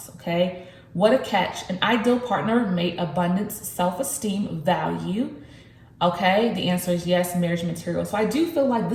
okay? What a catch. An ideal partner, mate, abundance, self-esteem, value. Okay, the answer is yes, marriage material. So I do feel like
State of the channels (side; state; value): both; identical; correlation 1.00